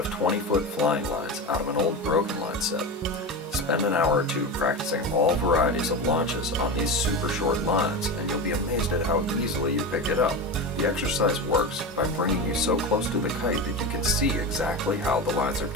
20-foot flying lines out of an old broken line set. Spend an hour or two practicing all varieties of launches on these super short lines, and you'll be amazed at how easily you pick it up. The exercise works by bringing you so close to the kite that you can see exactly how the lines are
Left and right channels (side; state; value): both; normal; correlation 0.22